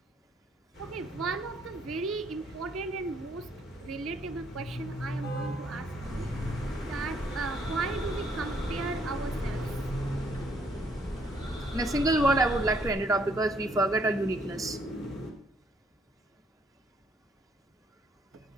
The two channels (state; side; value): normal; both; correlation 0.68